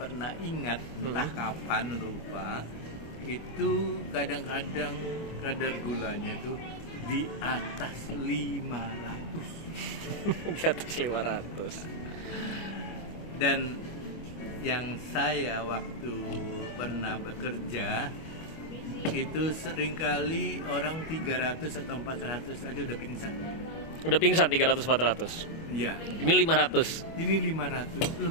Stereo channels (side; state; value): right; late; 24 ms